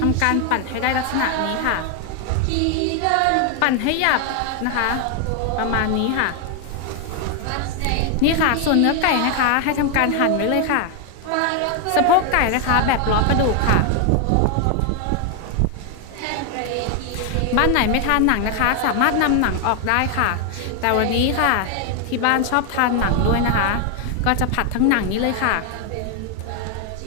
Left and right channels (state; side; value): different; both; correlation 0.01